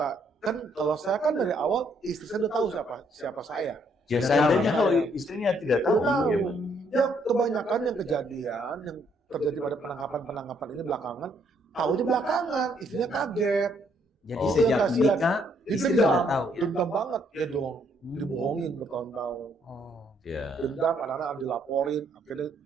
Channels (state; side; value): normal; both; correlation 0.70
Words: kalau saya kan dari awal istri saya udah tahu siapa saya. Ya Sudah seandainya tahu. kalau istrinya tidak tahu, Udah tahu. ya, Ya kebanyakan yang kejadian yang terjadi pada penangkapan ini belakangan, tahunya belakangan, istrinya kaget. Jadi Oh. sejak Kasihan. nikah istri Dendam, sudah tahu. Ya? dendam banget ya dong, dibohongin bertahun-tahun. Oh. ya. Dendam, anak-anak dilaporin, akhirnya